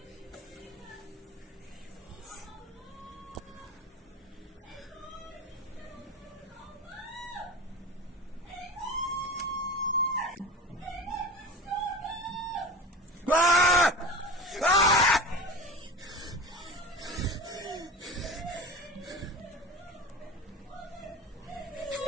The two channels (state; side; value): normal; both; correlation 0.32